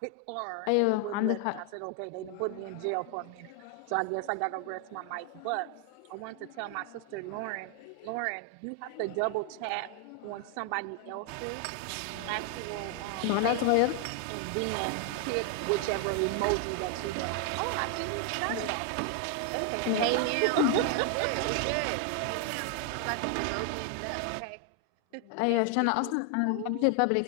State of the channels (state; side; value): different; both; correlation 0.00